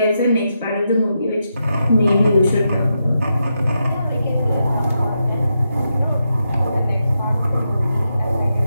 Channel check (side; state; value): both; inverted; correlation -0.84